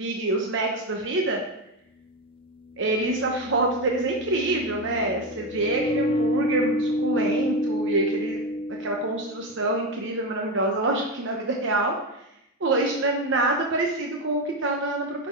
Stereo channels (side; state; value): both; normal; correlation 0.13